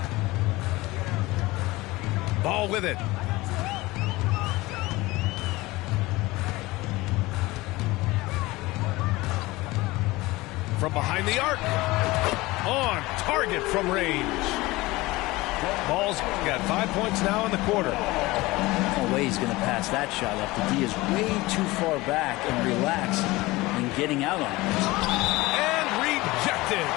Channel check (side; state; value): right; quieter; 20.5 dB